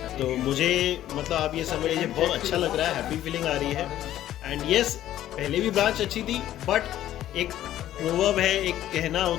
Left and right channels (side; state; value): right; quieter; 12.7 dB